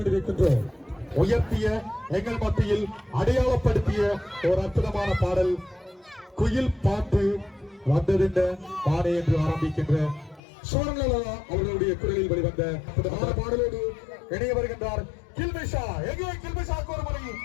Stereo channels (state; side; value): drops out; right; at 10.4 s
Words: உயர்த்திய எங்கள் மத்தியில் அடையாளப்படுத்திய ஒரு அற்புதமான பாடல் குயில் பாட்டு வந்ததின்ற பாடை என்று ஆரம்பிக்கின்ற சோரங்கலா அவர்களுடைய குரலில் வெளிவந்த அற்புதமான பாடலோடு இணைய வருகின்றார் கில்மிஷா. எங்கே கில்மிஷாக்கு ஒரு முறை